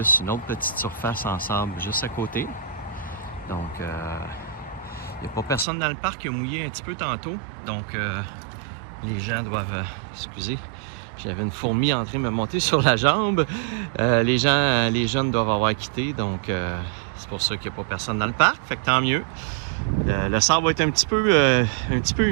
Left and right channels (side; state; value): left; drops out; at 5.7 s